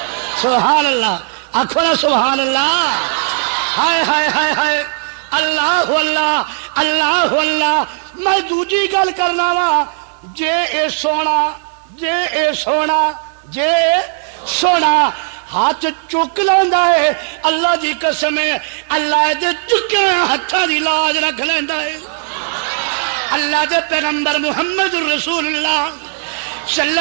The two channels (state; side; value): silent; left; digital silence